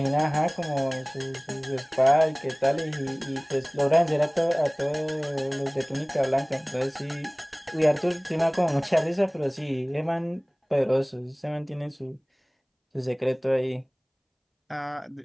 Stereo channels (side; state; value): both; identical; correlation 1.00